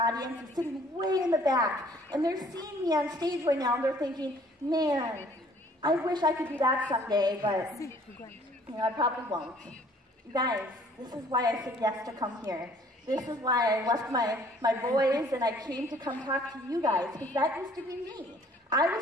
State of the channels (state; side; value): normal; both; correlation 0.57